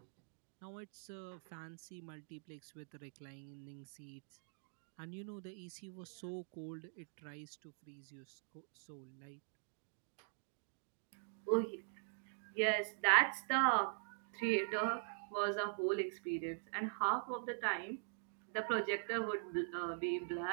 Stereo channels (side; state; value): left; silent; digital silence